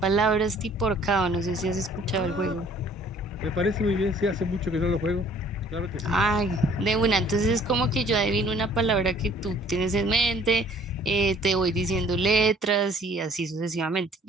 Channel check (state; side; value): normal; both; correlation 0.56